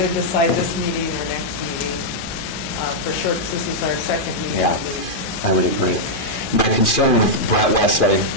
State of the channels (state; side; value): late; right; 2.4 ms